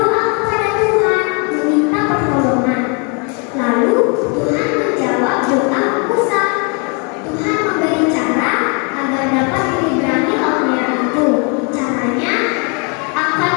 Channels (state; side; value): quieter; right; 34.9 dB